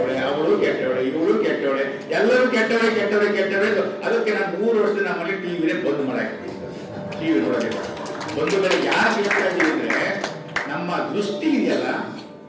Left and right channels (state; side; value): identical; both; correlation 1.00